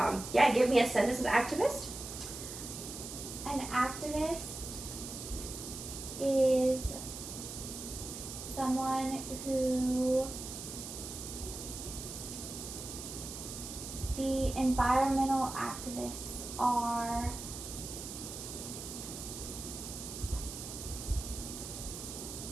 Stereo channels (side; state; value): right; noise; hiss, 9 dB below the sound